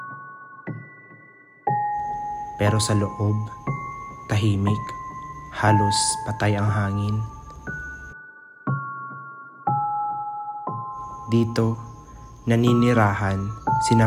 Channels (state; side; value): identical; both; correlation 1.00